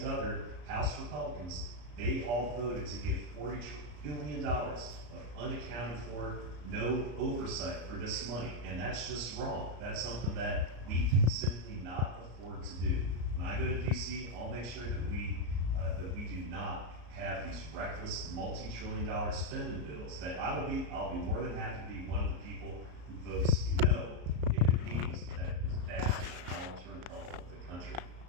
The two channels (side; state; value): left; late; 34 ms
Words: other House Republicans, they all voted to give $40 billion of unaccounted for, no oversight for this money. And that's just wrong. That's something that we can simply not afford to do. When I go to DC, I'll make sure that we do not have these reckless multi-trillion-dollar spending bills. That I'll be more than happy to be one of the people who votes no if it means that it's bad for the long-term health of the country.